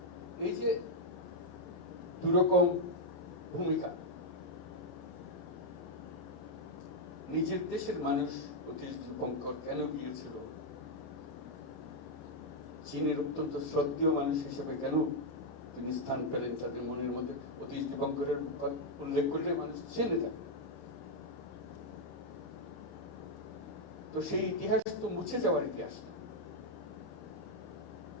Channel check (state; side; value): late; right; 28 ms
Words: এই যে দুরকম ভূমিকা, নিজের দেশের মানুষ অতীশ দীপঙ্কর কেন গিয়েছিল, চীনের অত্যন্ত শ্রদ্ধেয় মানুষ হিসেবে কেন তিনি স্থান পেলেন তাদের মনের মধ্যে, অতীশ দীপঙ্করের উল্লেখ করলে মানুষ চেনে থাকে। তো সেই ইতিহাস তো মুছে যাওয়ার ইতিহাস,